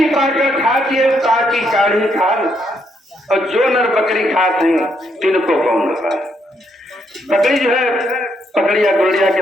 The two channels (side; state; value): both; normal; correlation 0.75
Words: काटकर खाती है काटी काढ़ी खाल, और जो नर बकरी खाते हैं तिनको कौन खा। बकरी जो है पकड़िया गुड़िया के